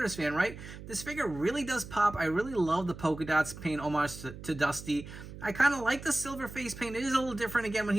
fan, right? This figure really does pop. I really love the polka dots paying homage to Dusty. I kind of like the silver face paint. It is a little different again when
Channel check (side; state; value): right; noise; hum, 13 dB below the sound